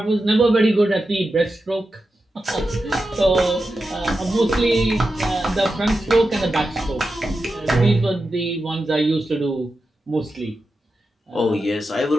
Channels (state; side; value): normal; both; correlation 0.90